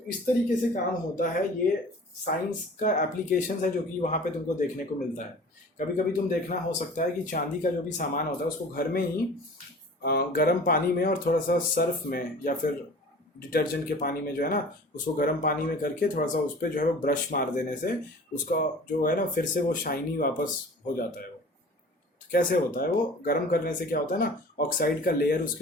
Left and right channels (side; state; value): both; normal; correlation 0.43